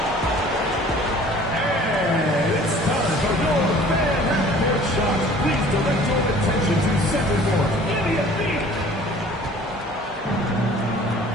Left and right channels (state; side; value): normal; both; correlation 0.50